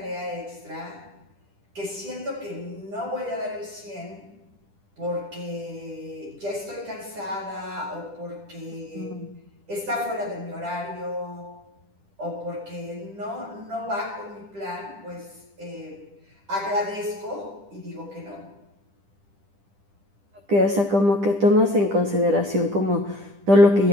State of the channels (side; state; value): left; late; 10 ms